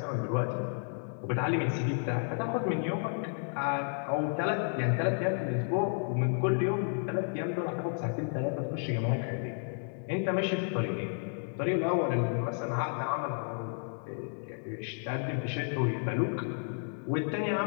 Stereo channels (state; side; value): silent; right; 55 dB below the other